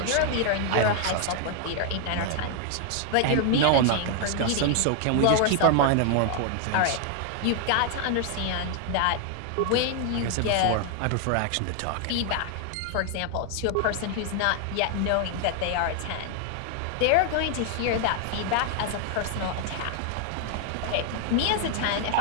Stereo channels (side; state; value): both; different; correlation 0.00